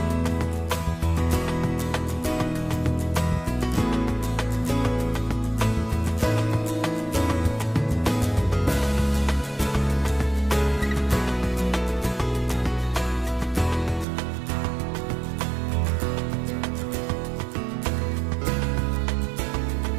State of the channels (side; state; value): left; drops out; at 14.1 s